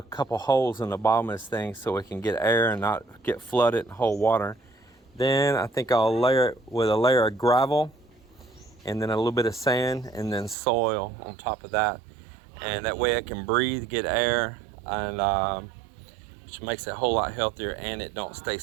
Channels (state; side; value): drops out; left; at 10.6 s